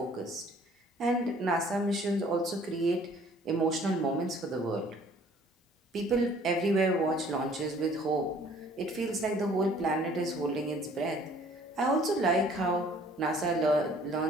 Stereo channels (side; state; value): both; normal; correlation 0.56